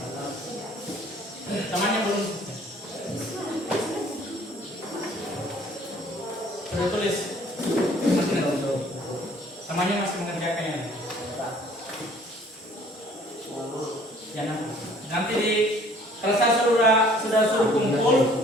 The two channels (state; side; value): normal; both; correlation 0.56